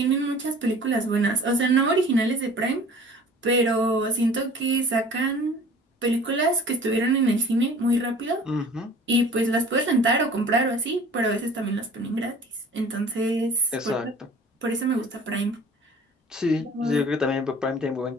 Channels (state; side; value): normal; both; correlation 0.46